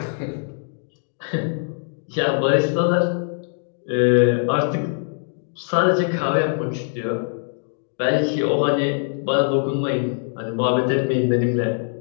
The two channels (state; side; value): silent; right; digital silence